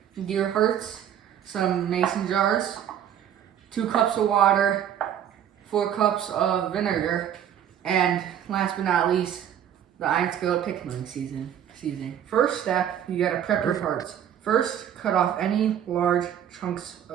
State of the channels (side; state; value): left; quieter; 9.8 dB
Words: deer hearts, some mason jars, 2 cups of water, 4 cups of vinegar, and last but not least, the Iron Skillet pickling seasoning. First step, you gotta prep your hearts. First, cut off any large chunks